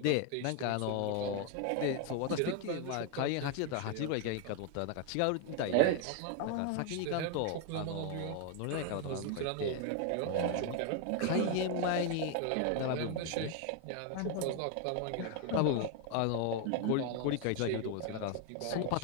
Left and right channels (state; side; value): different; both; correlation 0.01